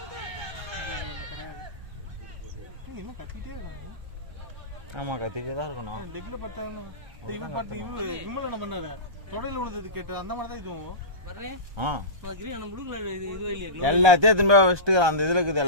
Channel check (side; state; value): left; late; 1.2 ms